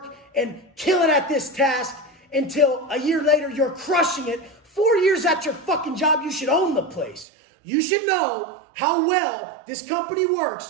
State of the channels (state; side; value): drops out; left; at 7.2 s